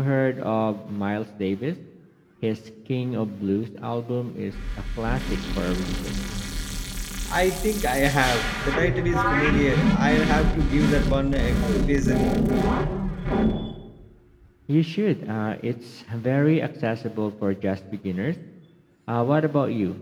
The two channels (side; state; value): both; identical; correlation 1.00